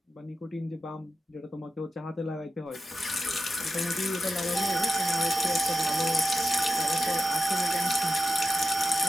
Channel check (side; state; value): both; normal; correlation 0.88